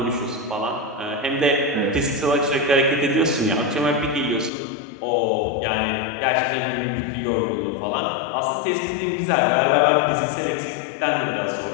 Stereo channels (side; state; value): right; drops out; at 4.5 s